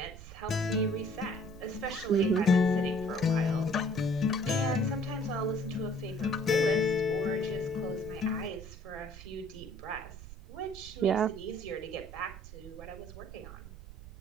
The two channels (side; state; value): right; noise; rumble, 15 dB below the sound